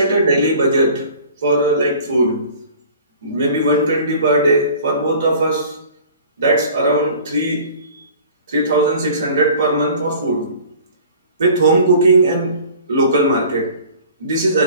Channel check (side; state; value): both; inverted; correlation -0.47